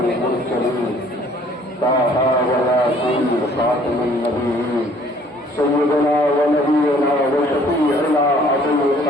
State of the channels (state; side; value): normal; both; correlation 0.58